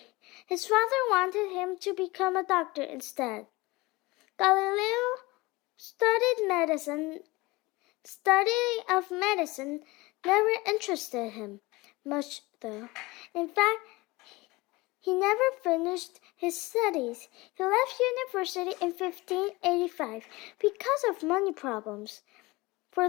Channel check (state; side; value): quieter; right; 22.3 dB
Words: his father wanted him to become a doctor instead. Galileo studying of medicine never interested him much, though. In fact, he never finished his studies. He left university in 1585 because of money problems. For